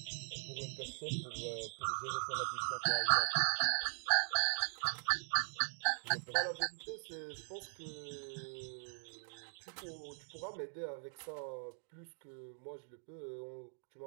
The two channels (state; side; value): silent; left; digital silence